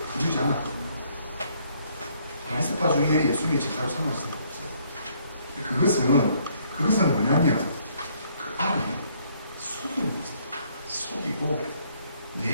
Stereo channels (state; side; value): inverted; both; correlation -0.67